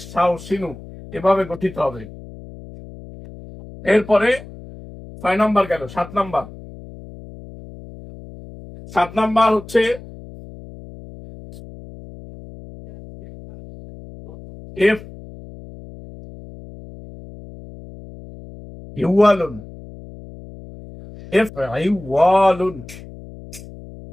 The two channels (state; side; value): noise; left; hum, 17 dB below the sound